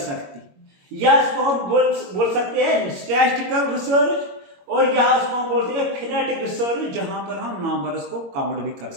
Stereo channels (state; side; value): late; left; 22 ms